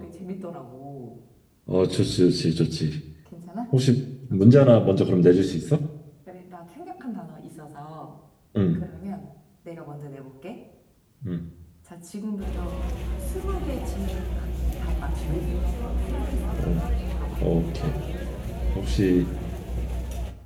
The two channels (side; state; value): both; identical; correlation 1.00